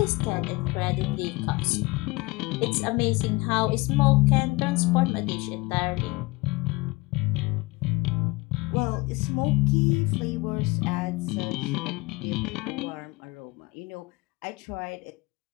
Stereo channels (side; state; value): right; quieter; 23.5 dB